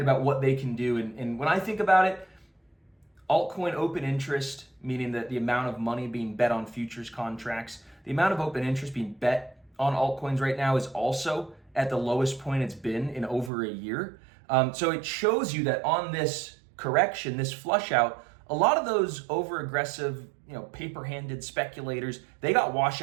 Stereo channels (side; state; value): left; drops out; at 13.5 s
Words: what they can do. And when I think about it, altcoin open interest, meaning that the amount of money being bet on futures contracts, the amount of open interest being bet on altcoins right now is also at the lowest point it's been in over a year. So it shows you that on this correction, this flush out, a lot of those over aggressive, paper-handed speculators, they got washed